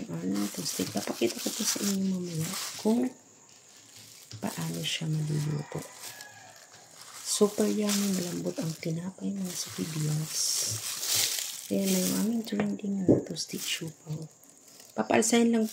aming toasted. Papakita ko po sa inyo mamaya kung paano siya maluluto. Super yummy, malambot ang tinapay mga sa Reveals. Ayan na yung aming trending na toasted siopaw. Papaalsahin lang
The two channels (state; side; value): identical; both; correlation 1.00